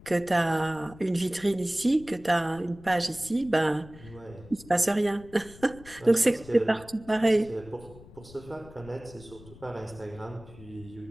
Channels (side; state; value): left; noise; rumble, 20 dB below the sound